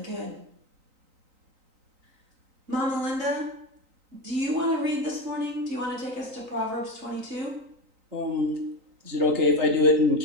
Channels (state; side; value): late; left; 3.9 ms